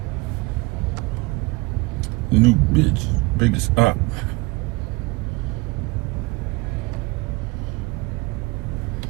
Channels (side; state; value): left; quieter; 24.4 dB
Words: New bitch. Biggest op.